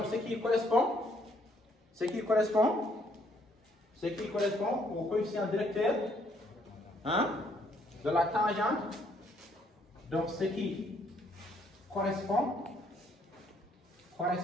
ce qui correspond au coefficient directeur, hein, de la tangente. Donc, ce qui correspond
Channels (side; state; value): both; normal; correlation 0.68